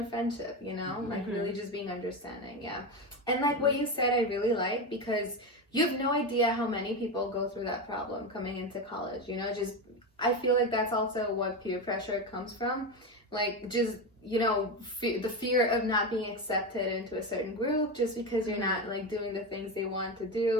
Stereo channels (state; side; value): normal; both; correlation 0.16